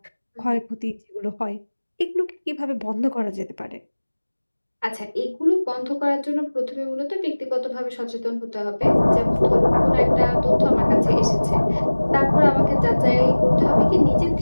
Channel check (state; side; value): inverted; both; correlation -1.00